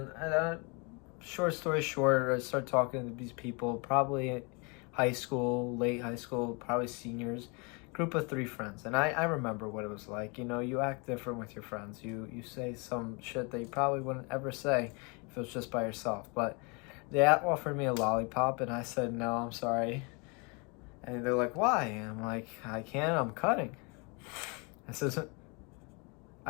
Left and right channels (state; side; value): quieter; right; 31.6 dB